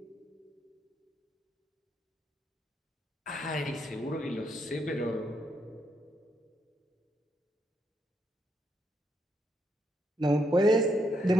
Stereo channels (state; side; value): normal; both; correlation 0.77